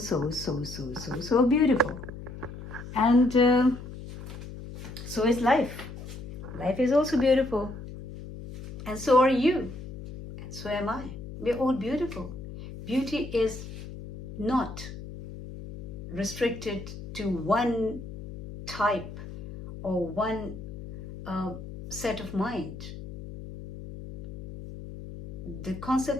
beautiful. And so is life. Life is also beautiful. And so are you. And so am I. We're all beautiful. Beauty is not restricted to one type or one set of mind. The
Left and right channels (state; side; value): noise; left; hum, 11 dB below the sound